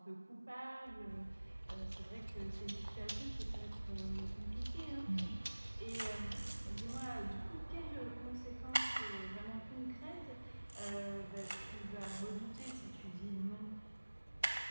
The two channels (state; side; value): inverted; both; correlation -1.00